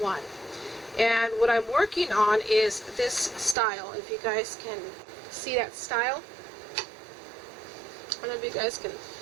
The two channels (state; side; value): drops out; left; at 3.6 s